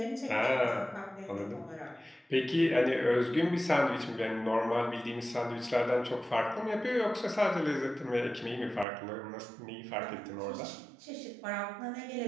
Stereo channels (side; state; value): left; drops out; at 8.8 s